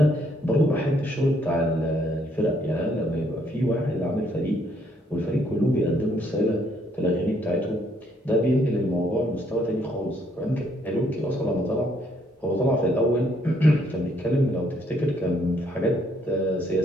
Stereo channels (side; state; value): both; normal; correlation 0.69